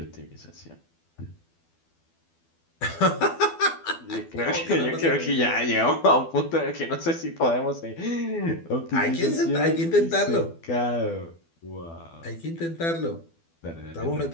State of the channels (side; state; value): right; late; 12 ms